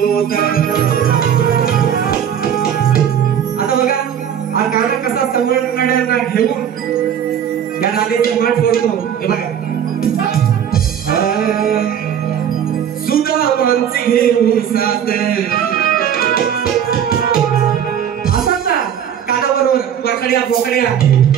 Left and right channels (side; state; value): left; quieter; 9.0 dB